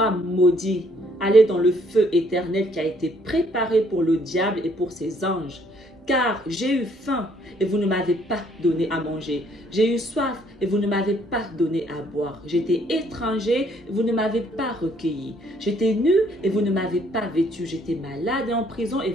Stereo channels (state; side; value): normal; both; correlation 0.65